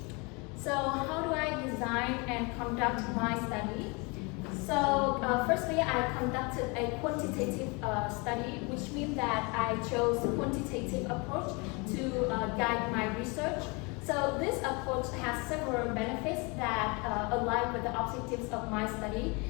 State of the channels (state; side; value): quieter; right; 29.3 dB